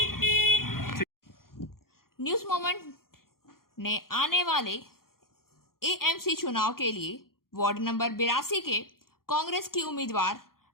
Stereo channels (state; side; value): late; right; 0.92 ms